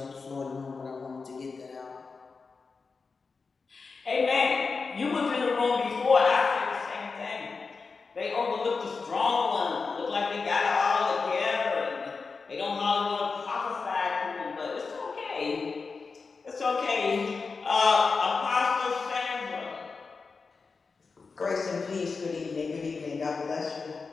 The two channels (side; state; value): right; quieter; 4.6 dB